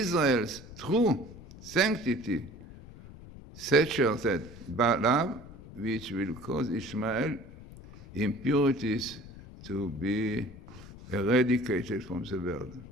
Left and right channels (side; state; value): left; noise; rumble, 17 dB below the sound